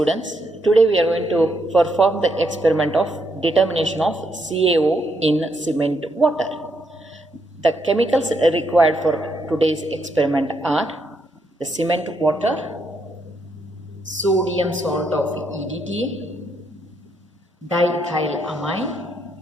today we are going to perform the experiment of determination of CaO in cement water. The chemicals required for today's experiment are the cement water, sodium salt of EDTA, diethylamine,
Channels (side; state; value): both; normal; correlation 0.77